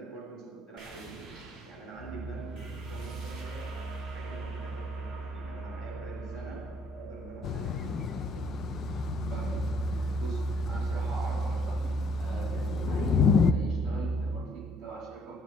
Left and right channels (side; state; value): both; normal; correlation 0.65